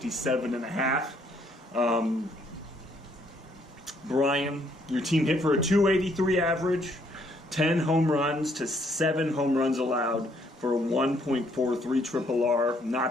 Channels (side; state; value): both; normal; correlation 0.68